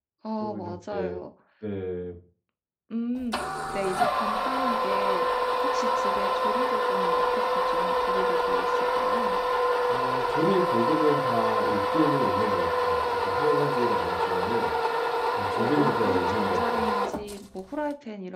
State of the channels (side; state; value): both; identical; correlation 1.00